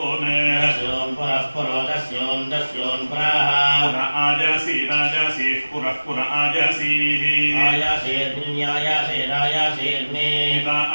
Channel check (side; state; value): both; inverted; correlation -1.00